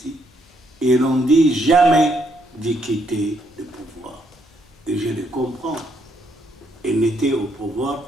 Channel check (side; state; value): both; normal; correlation 0.73